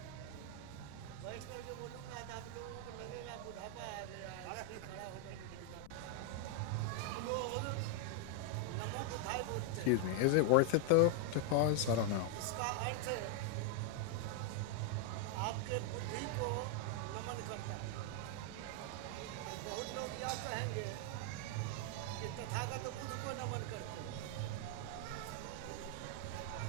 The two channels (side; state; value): both; different; correlation 0.00